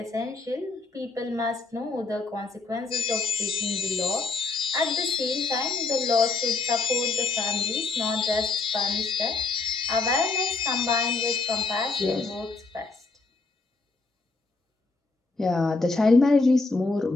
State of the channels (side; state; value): right; quieter; 3.8 dB